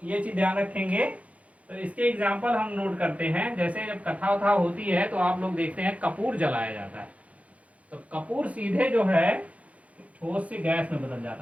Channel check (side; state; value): left; late; 0.066 ms